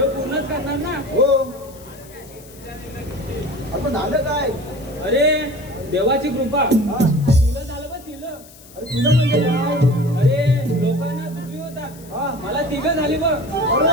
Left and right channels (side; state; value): left; noise; hiss, 22 dB below the sound